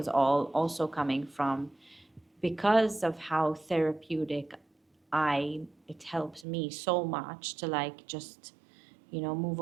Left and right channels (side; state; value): left; drops out; at 6.5 s